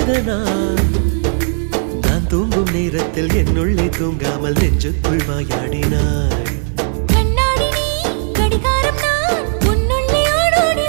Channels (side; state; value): left; silent; digital silence